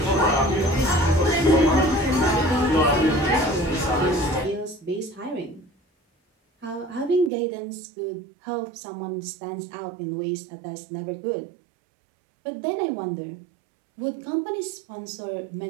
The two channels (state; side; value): drops out; left; at 7.3 s